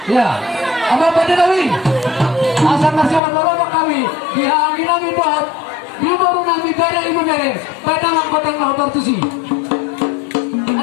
Ya, apa pada nawi? Asal nasihat baru kami dihangin nami buat di baru nami gara ibu mere. Pada mangkoteng lapor tusi.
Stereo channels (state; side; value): drops out; right; at 3.2 s